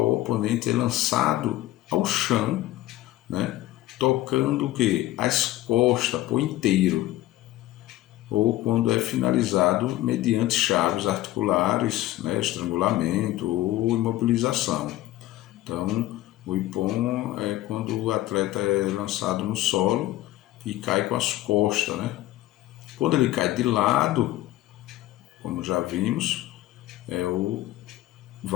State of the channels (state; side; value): quieter; right; 15.5 dB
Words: o oponente é lançado ao chão, né? Tocando o quê? As costas por inteiro, ou quando é finalizado mediante chaves articulares, né? Estrangulamento ou imobilização. Então, o Ippon é quando o atleta é lançado no solo e cai com as costas, né? Quando ele cai de lado, como já vimos, é o